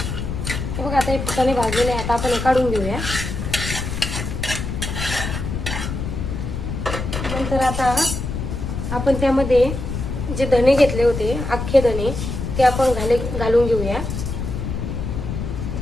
बघा आता हे फुटाणे भाजलेले आहे. आता आपण हे काढून घेऊया. नंतर आता आपण त्यामध्ये जे धणे घेतले होते अख्खे धणे ते आपण घालून घेऊया.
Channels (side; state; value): left; noise; rumble, 4 dB below the sound